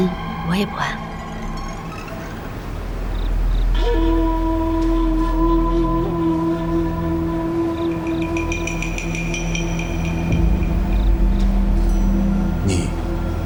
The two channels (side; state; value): both; identical; correlation 1.00